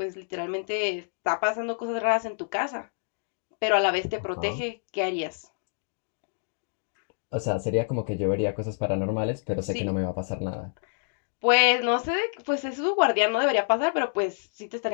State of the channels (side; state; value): right; silent; digital silence